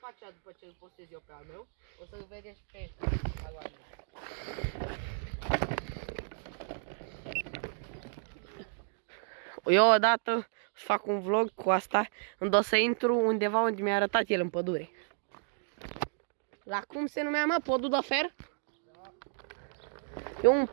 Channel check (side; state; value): left; silent; digital silence